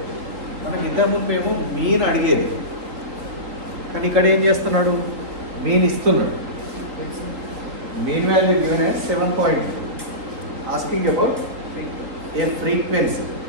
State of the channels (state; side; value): late; left; 3.8 ms